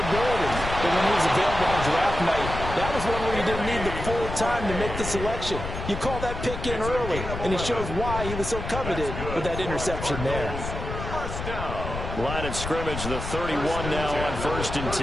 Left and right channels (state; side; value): noise; left; rumble, 6 dB below the sound